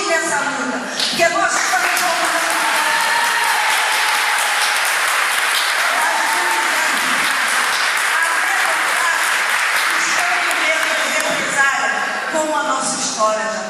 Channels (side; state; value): both; identical; correlation 1.00